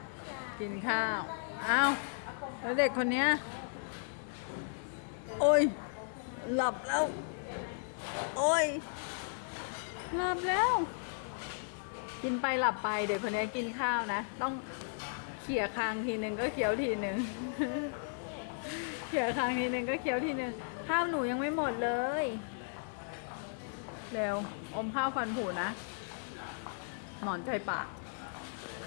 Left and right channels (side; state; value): right; silent; digital silence